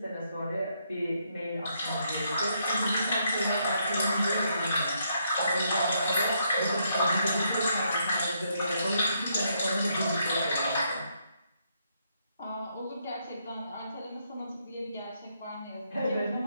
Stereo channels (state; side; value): inverted; both; correlation -0.76